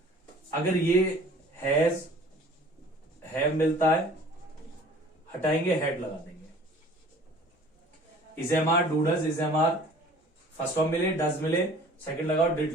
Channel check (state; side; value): normal; both; correlation 0.49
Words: अगर ये हैज, हैव मिलता है, हटाएंगे, हैड लगा देंगे। Is am are, do does, is am are first form मिले, डज मिले, सेकंड लगाओ,